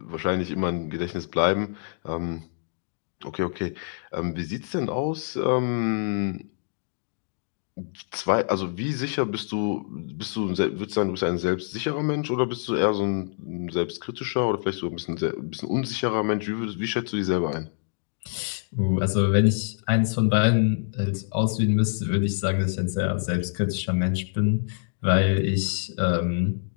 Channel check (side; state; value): right; silent; digital silence